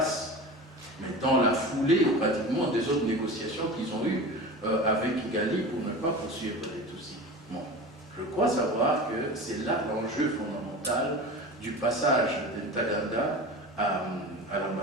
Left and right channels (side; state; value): both; normal; correlation 0.32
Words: Mais dans la foulée, pratiquement, des autres négociations qu'ils ont eues avec Kigali pour ne pas poursuivre les Tutsis. Bon. Je crois savoir que c'est là l'enjeu fondamental du passage de Ntaganda à